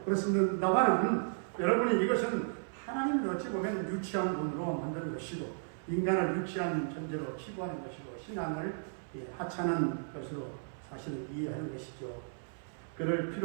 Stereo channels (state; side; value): silent; left; 55 dB below the other